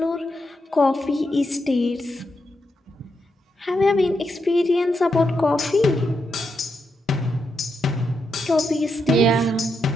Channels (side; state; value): both; normal; correlation 0.83